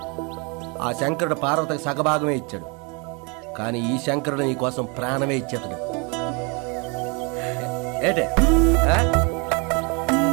ఆ శంకరుడు పార్వతికి సగభాగమే ఇచ్చాడు, కానీ ఈ శంకరుడు నీ కోసం ప్రాణమే ఇచ్చేతాడు. ఏటే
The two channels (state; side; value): quieter; left; 32.0 dB